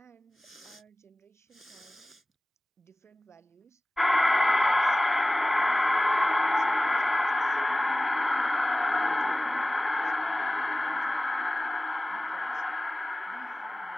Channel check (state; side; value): normal; both; correlation 0.97